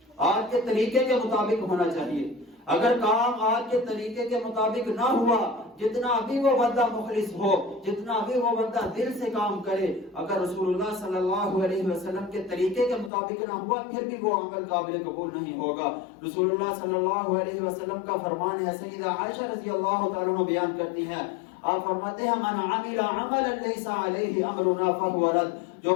آج کے طریقے کے مطابق ہونا چاہیے۔ اگر کام آج کے طریقے کے مطابق نہ ہوا، جتنا بھی وہ بندہ مخلص ہو، جتنا بھی وہ بندہ دل سے کام کرے، اگر رسول اللہ صلی اللہ علیہ وسلم کے طریقے کے مطابق نہ ہوا، پھر بھی وہ عمل قابل قبول نہیں ہوگا۔ رسول اللہ صلی اللہ علیہ وسلم کا فرمان ہے، سیدہ عائشہ رضی اللہ تعالیٰ عنہ بیان کرتی ہیں، آپ فرماتے ہیں من عمل عملا لیس علیہ امرنا فہو رد، جو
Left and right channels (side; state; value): right; drops out; at 13.1 s